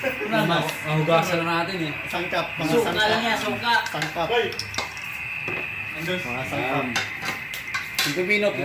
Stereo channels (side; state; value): both; identical; correlation 1.00